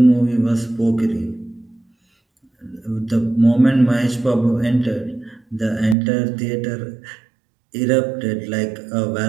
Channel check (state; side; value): drops out; left; at 6.0 s